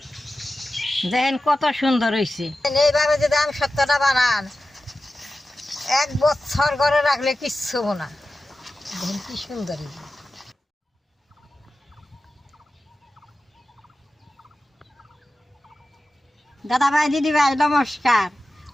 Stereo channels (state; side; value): normal; both; correlation 0.94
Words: দেখেন কত সুন্দর হয়েছে। এইভাবে যদি আম সত্ত্বটা বানান, 1 বছর ঘরে রাখলে কিচ্ছু না। দেখেন কি সুন্দর হয়েছে। দাদা ভাই, দিদি ভাই, নমস্কার।